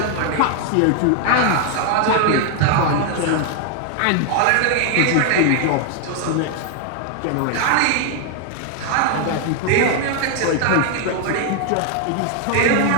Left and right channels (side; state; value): both; different; correlation 0.00